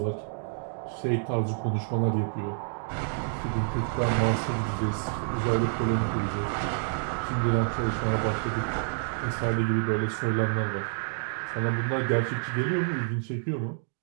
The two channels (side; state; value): left; silent; 59 dB below the other